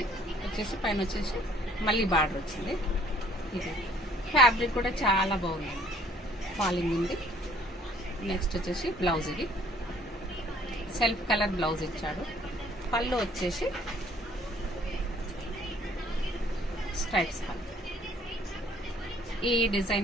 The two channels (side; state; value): both; normal; correlation 0.58